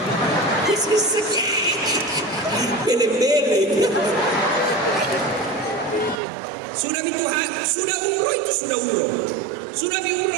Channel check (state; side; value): drops out; left; at 6.2 s